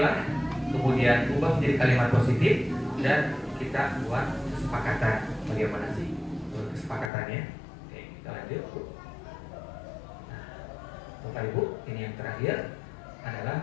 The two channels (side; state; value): right; drops out; at 7.1 s